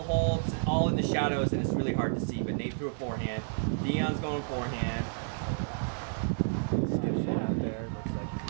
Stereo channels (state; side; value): silent; left; digital silence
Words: hole. It's all in the shadows, and it's really hard to see, but Nate threw a forehand. Dion's going forehand. Skips one out there. Looks like he's